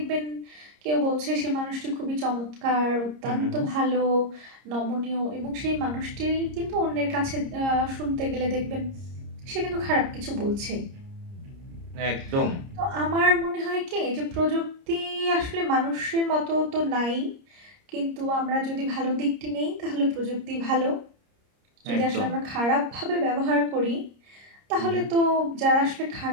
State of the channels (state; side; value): late; left; 30 ms